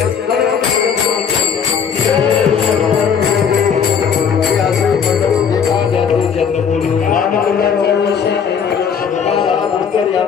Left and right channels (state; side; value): quieter; right; 7.0 dB